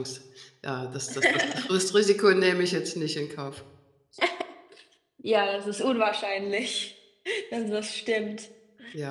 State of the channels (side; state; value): both; identical; correlation 1.00